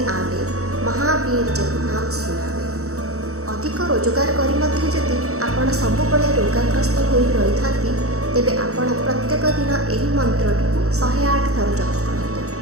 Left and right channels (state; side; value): late; left; 0.65 ms